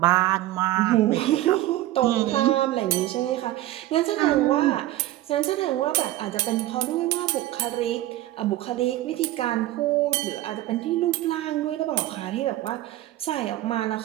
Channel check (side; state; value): left; quieter; 15.4 dB